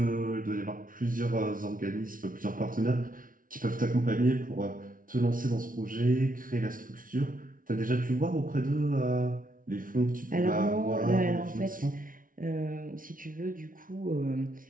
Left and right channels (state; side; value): late; left; 0.39 ms